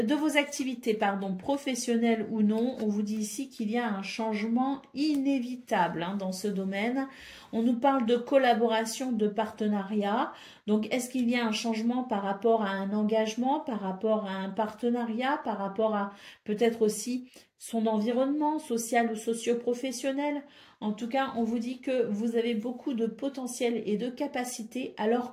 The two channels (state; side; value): identical; both; correlation 1.00